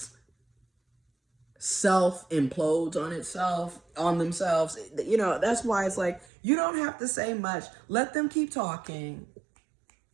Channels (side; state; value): left; drops out; at 6.2 s